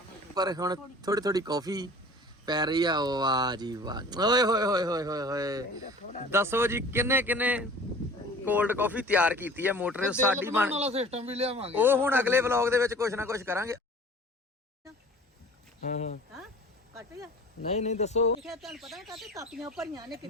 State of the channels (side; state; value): both; normal; correlation 0.45